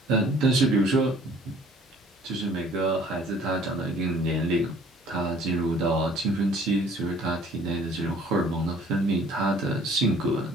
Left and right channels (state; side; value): normal; both; correlation 0.55